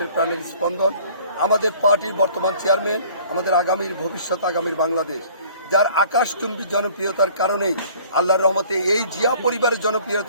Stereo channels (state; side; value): inverted; both; correlation -0.52